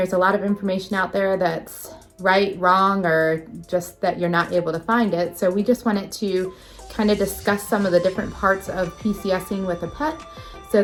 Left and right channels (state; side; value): identical; both; correlation 1.00